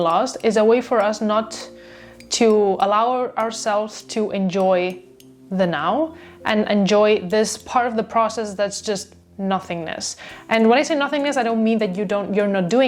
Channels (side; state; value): both; identical; correlation 1.00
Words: is a way for us not to allow ourselves to enjoy the now and enjoy this part of the process that's just nothingness. And when I say nothingness, I don't mean that you're not